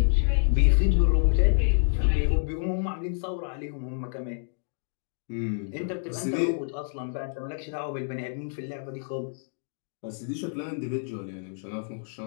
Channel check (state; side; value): silent; right; digital silence